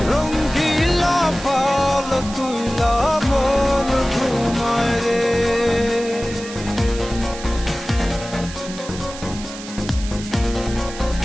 রঙ্গিলা পাল তুইলা মন ঘুমায় রে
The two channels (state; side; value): noise; right; hiss, 13 dB below the sound